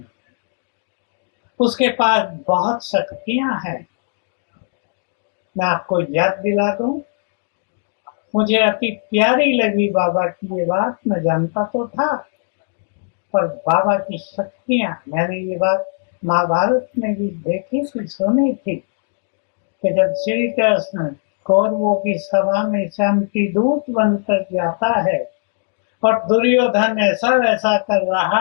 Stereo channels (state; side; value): silent; right; digital silence